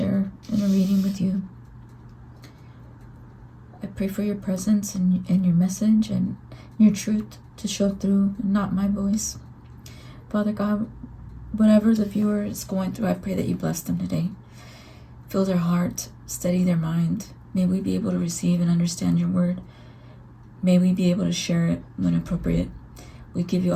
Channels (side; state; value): both; identical; correlation 1.00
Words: in a reading with you. I pray for your presence and your message and your truth to show through, not my voice. Father God, whatever the viewer is going through, I pray that you bless them today. Fill their heart, steady their mind. May we be able to receive and understand your word. May we be able to share it when appropriate. We give you